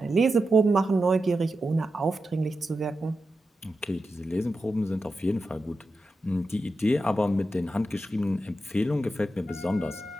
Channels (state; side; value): normal; both; correlation 0.89